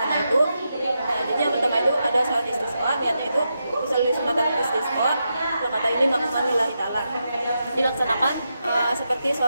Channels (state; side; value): inverted; both; correlation -0.86